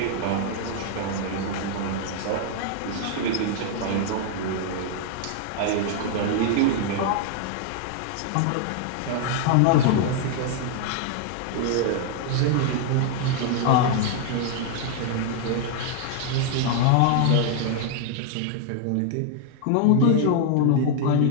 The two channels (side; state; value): both; different; correlation 0.00